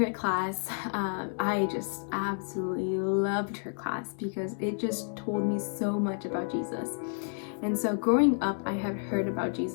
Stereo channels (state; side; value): silent; right; 58 dB below the other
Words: class, I just absolutely loved her class, because it just told me so much about Jesus. And so growing up, I had heard about